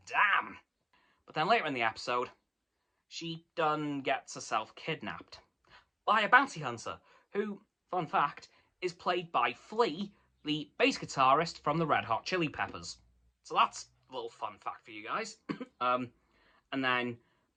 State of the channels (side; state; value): both; identical; correlation 1.00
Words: damn. But then later in the episode, she done gets herself kidnapped by a bounty hunter, who, fun fact, is played by Flea, the bass guitarist from the Red Hot Chili Peppers. So that's a little fun fact for you guys. And then